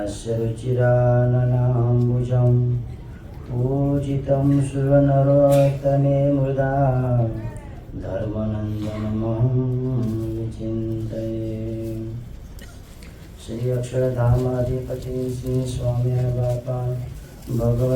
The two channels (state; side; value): identical; both; correlation 1.00